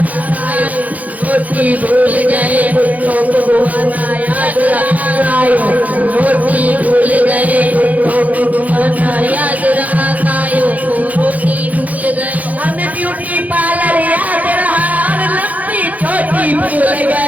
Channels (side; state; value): left; late; 0.076 ms